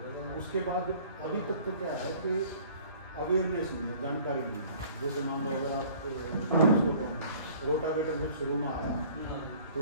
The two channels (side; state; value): both; inverted; correlation -0.51